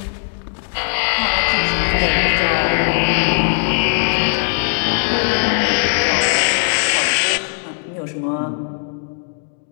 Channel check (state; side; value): silent; right; digital silence